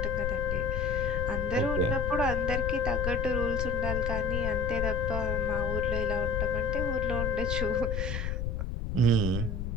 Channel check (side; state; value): left; noise; rumble, 2 dB below the sound